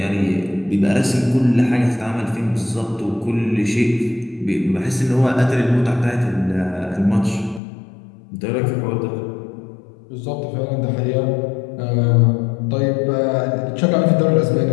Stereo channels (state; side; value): drops out; right; at 7.6 s